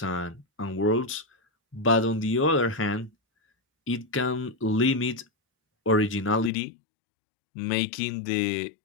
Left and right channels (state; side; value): drops out; right; at 6.5 s